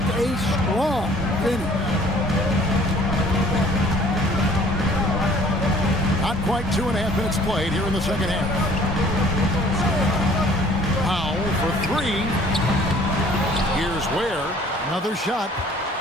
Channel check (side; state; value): both; normal; correlation 0.54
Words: a strong finish. Not quite 2.5 minutes played here in the second half. Powell for 3. Here's Ware. Another shot.